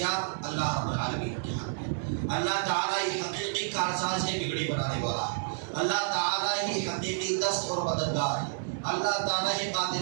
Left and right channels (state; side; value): silent; left; 55 dB below the other